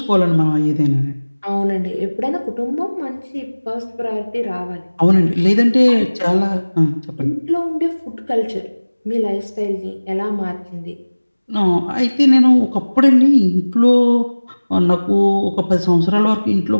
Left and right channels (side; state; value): both; inverted; correlation -1.00